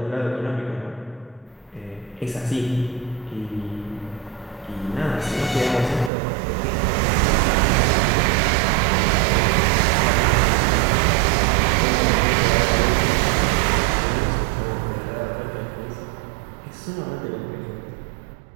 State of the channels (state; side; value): drops out; left; at 6.1 s